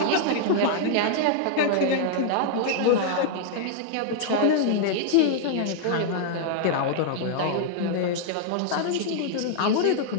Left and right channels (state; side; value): different; both; correlation -0.01